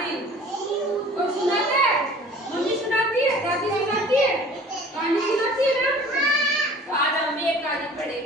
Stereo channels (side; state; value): both; normal; correlation 0.47